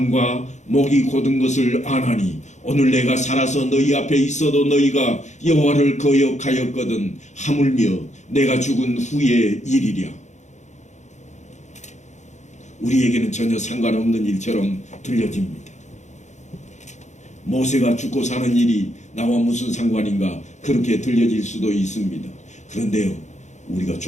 목이 곧은 것을 아나니 오늘 내가 살아서 너희 앞에 있어도 너희가 여호와를 거역하였거든 하물며 내가 죽은 후의 일이랴. 우리에게는 전혀 상관없는 일처럼 들려집니다. 모세가 죽고 사는 일이 나와 무슨 상관인가 그렇게 들려질 수도 있습니다. 그런데요, 우리가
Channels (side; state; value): right; late; 0.34 ms